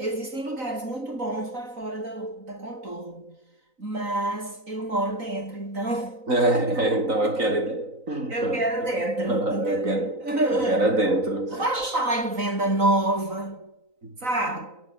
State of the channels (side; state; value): left; late; 3.9 ms